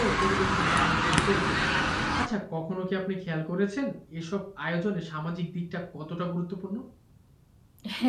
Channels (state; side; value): identical; both; correlation 1.00